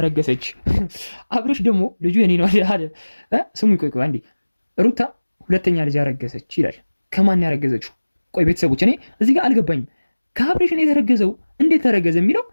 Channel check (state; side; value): inverted; both; correlation -1.00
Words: አብርሽ ደግሞ ልጁ የኔ ነው አለ። ስሙ ቆይ አንዴ ሩታ ሁለተኛ ልጅ አረገዘች ይላል። ከማን ያረገዘችው? ቆይ ቤተሰቦች እኔ እዚህ ጋር አልገባኝም። ከአብርሽ ነው የተረገዘው። እንዴት ተረገዘ የሚለው